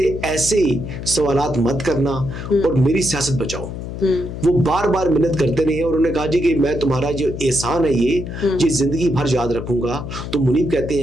ایسے سوالات مت کرنا اور میری سیاست بچاؤ. وہ بار بار منت کرتے رہے اور انہوں نے کہا جی کہ میں تمہارا جو احسان ہے یہ زندگی بھر یاد رکھوں گا. تو منیب کہتے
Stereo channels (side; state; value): left; noise; hum, 8 dB below the sound